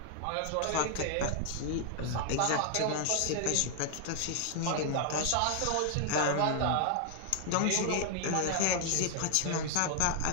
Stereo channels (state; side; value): different; both; correlation 0.00